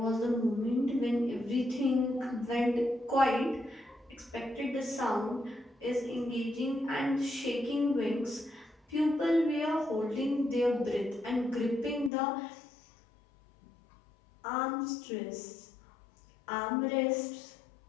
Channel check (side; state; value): right; drops out; at 12.1 s